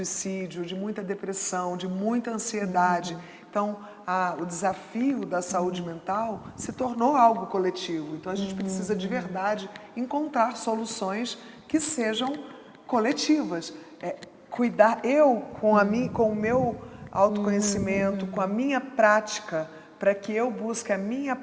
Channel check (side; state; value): both; identical; correlation 1.00